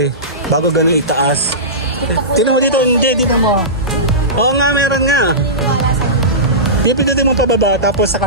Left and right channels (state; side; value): normal; both; correlation -0.20